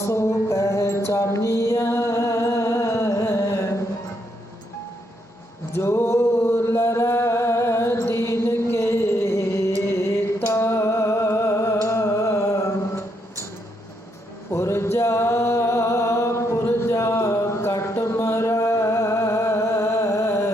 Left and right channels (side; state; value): both; normal; correlation 0.76